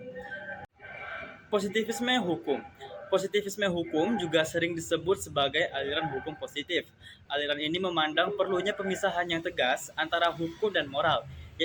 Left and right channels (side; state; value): both; identical; correlation 1.00